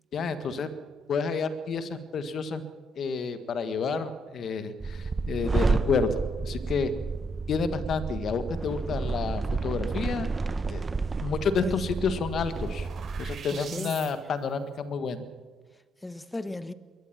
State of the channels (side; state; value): both; normal; correlation 0.76